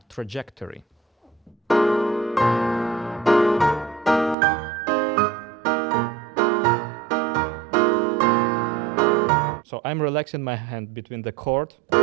trajectory. So I'm relaxing my hand between the chord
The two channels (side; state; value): left; drops out; at 4.4 s